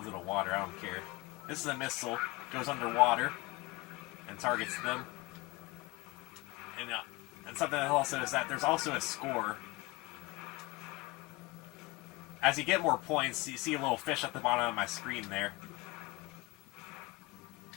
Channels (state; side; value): quieter; right; 23.3 dB